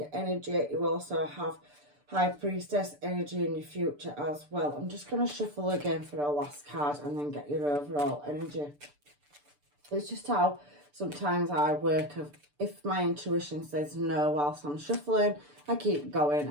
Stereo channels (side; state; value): left; late; 6.8 ms